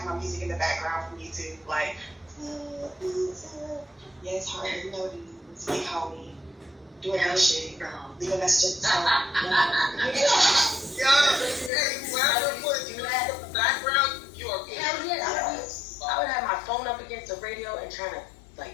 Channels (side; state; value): right; drops out; at 11.7 s